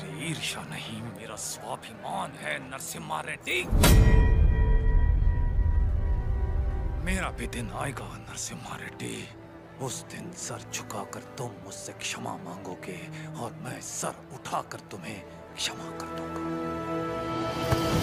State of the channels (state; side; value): identical; both; correlation 1.00